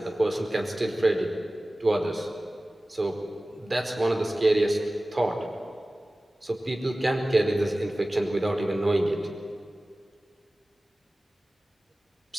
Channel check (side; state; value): both; normal; correlation 0.97